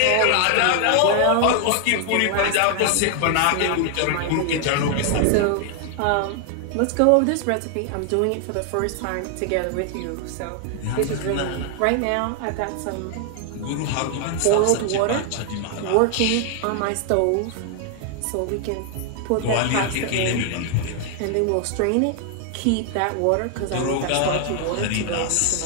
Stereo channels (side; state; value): both; different; correlation 0.00